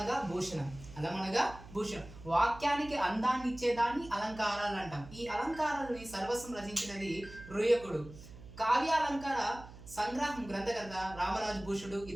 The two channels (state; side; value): noise; right; hum, 17 dB below the sound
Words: భూషణం, అలం అనగా భూషణం, వాక్యానికి అందాన్ని ఇచ్చేదాన్ని అలంకారాలు అంటాం. ఈ అలంకారాలని సర్వస్వం రచించినది రుయకుడు. కావ్యాలంకార సంగ్రహం గ్రంథకర్త రామరాజు భూషుడు,